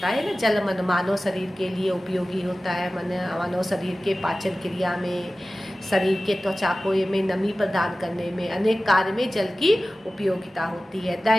ना, जल मानव शरीर के लिए उपयोगी होता है। मानव शरीर के पाचन क्रिया में, शरीर के त्वचा को में नमी प्रदान करने में, अनेक कार्य में जल की उपयोगिता होती है।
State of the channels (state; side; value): normal; both; correlation 0.96